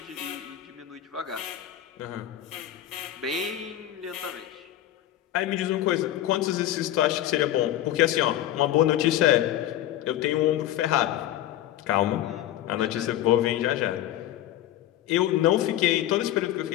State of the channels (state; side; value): quieter; right; 12.7 dB